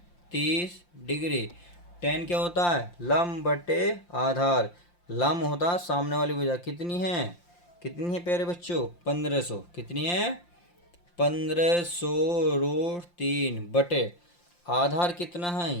30 डिग्री। tan क्या होता है, लंब बटे आधार, लंब होता है सामने वाली भुजा, कितनी है, कितनी है प्यारे बच्चों, 1500, कितनी है, 1500√3 बटे आधार कितना है,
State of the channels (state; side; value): late; right; 5.7 ms